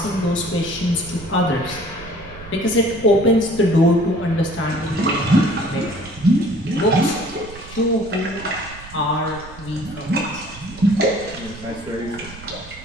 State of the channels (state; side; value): noise; right; rumble, 17 dB below the sound